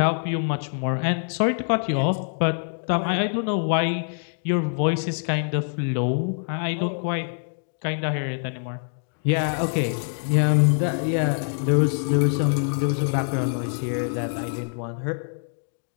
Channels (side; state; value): right; silent; digital silence